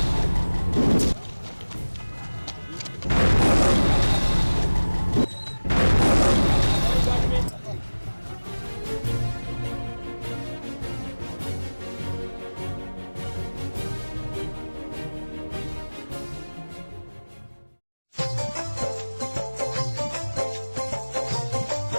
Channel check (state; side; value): inverted; both; correlation -1.00